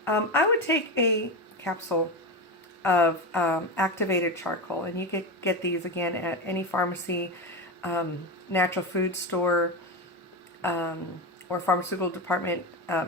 I would take a capsule of activated charcoal, and you could get these again at any pharmacy, natural food store, or pharmaceutical department,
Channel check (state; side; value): normal; both; correlation 0.18